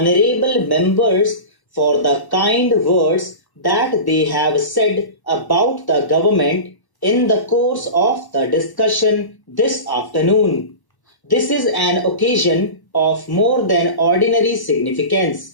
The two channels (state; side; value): late; right; 1.0 ms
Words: members for the kind words that they have said about the government in the course of the discussion this afternoon. This is an occasion of more than ordinary